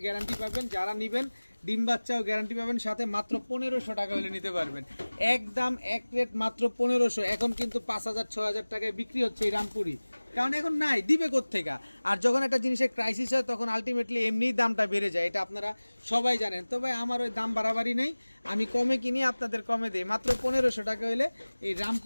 গ্যারান্টি পাবেন। যারা নেবেন ডিম বাচ্চাও গ্যারান্টি পাবেন, সাথে মাত্র 1500 টাকা হলে নিতে পারবেন। একদম এক রেট মাত্র 1500। এখন কিন্তু 5000 6000 টাকায় বিক্রি হচ্ছে এই রামপুরি, কারণ এখন নাই, দিবে কোত্থেকে। আর যখন একটা জিনিসের ক্রাইসিস হয় তখন আলটিমেটলি এমনিই দামটা বেড়ে যায়, এটা আপনারা সবাই জানেন। তো ভাই আমার ওই দাম বাড়াবাড়ি নেই, আমি কমে কিনি, আপনাদের কমে দিই। মাত্র 1500 টাকা হলে এই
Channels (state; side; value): inverted; both; correlation -1.00